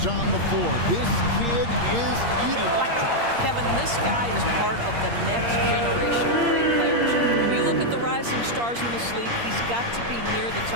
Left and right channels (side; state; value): left; late; 8.6 ms